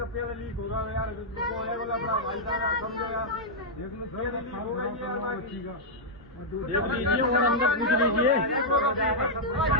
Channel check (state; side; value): normal; both; correlation -0.06